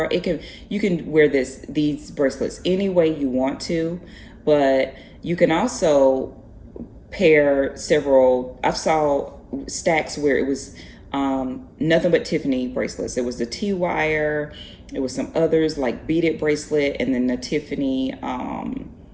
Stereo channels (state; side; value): identical; both; correlation 1.00